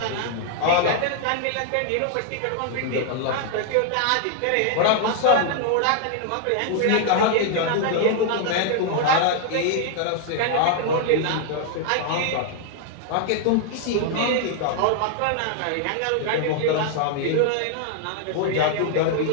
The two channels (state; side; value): different; both; correlation 0.00